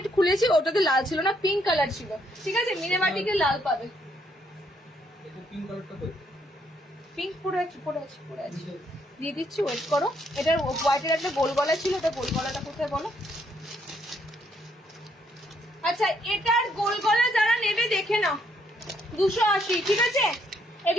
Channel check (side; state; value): both; normal; correlation 0.72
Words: খুলেছি, ওটাতে লাল ছিল না, পিঙ্ক কালার ছিল, ঠিক আছে? মিনেবাটিকে লাল পাবে। পিঙ্ক পরে আছে দিয়ে দিচ্ছি, ওয়েট করো। এটার হোয়াইটের একটা গোল গলা ছিল, ওটা গোল গলাটা কোথায় বলো? আচ্ছা, এটার গোল গলা যারা নেবে দেখে নাও, 280, ঠিক আছে?